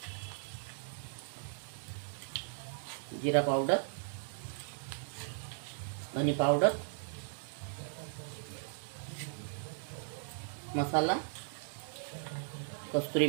जिरा पावडर, धनी पावडर, मसाला, कस्तुरी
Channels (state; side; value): silent; left; digital silence